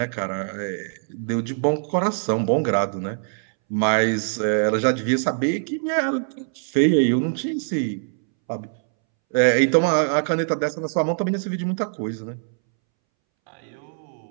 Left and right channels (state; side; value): silent; left; 63 dB below the other